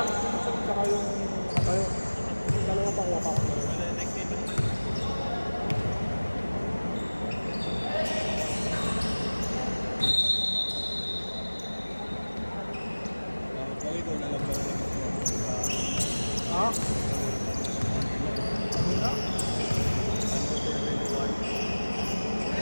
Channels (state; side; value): inverted; both; correlation -1.00